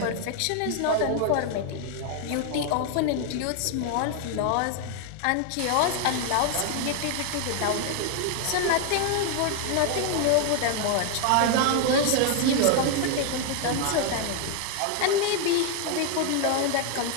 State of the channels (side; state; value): both; different; correlation 0.00